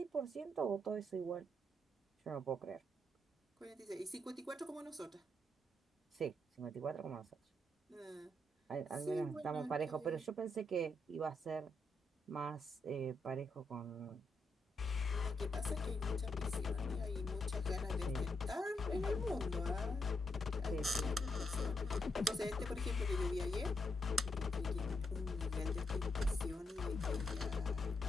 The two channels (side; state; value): both; normal; correlation 0.79